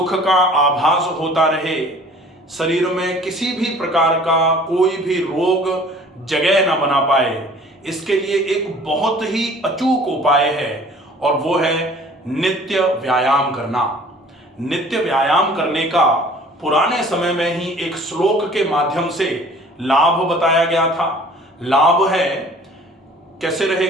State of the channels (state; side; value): normal; both; correlation 0.50